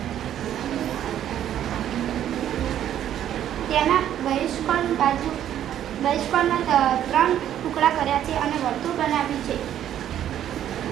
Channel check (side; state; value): left; quieter; 10.9 dB